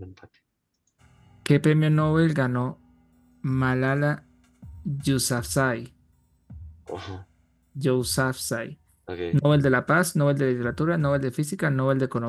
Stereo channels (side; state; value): both; identical; correlation 1.00